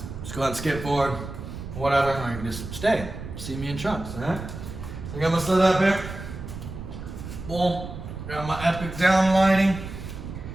just go ahead and skip forward, whatever, or you can just stay, see me in trunks, all right? So I got my set up here. Boom, got my epic down lighting.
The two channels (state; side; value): noise; right; rumble, 10 dB below the sound